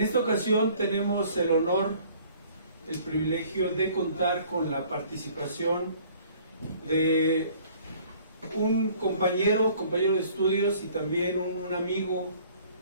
ocasión tenemos el honor, el privilegio de contar con la participación de un compañero de estudios y también un amigo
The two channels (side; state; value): both; inverted; correlation -0.55